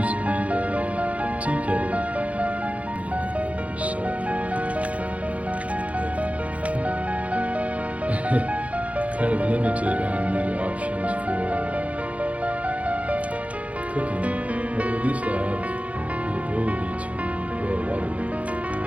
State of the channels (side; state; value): left; late; 0.066 ms